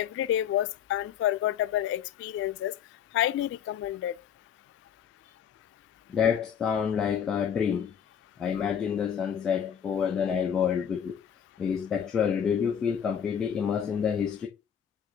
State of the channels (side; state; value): right; quieter; 8.3 dB